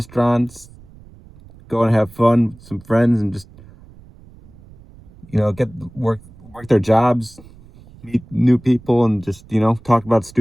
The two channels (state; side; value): noise; right; rumble, 23 dB below the sound